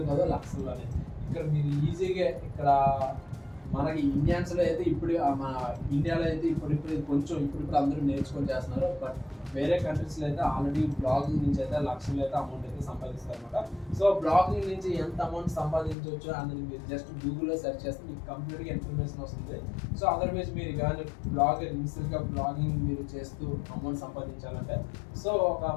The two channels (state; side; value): drops out; right; at 16.0 s